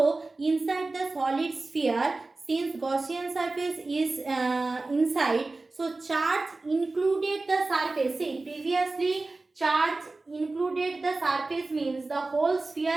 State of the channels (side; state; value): left; quieter; 3.3 dB